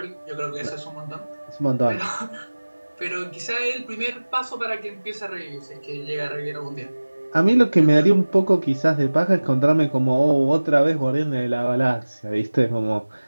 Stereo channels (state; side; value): inverted; both; correlation -1.00